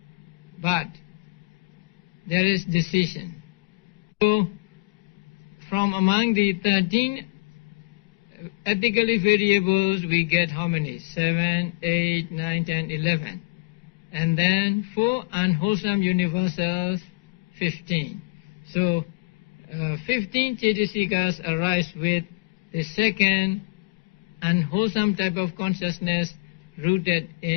but there is decision. So from among the 13 ethically variables we get how many? 7, 8, 9, 10, 11. And then 4 unwholesome universals, 15. So 15 cetasikas arise with the second unwholesome type of consciousness rooted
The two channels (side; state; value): right; quieter; 27.4 dB